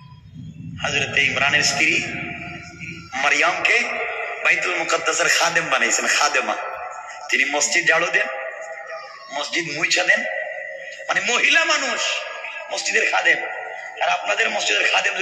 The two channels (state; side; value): identical; both; correlation 1.00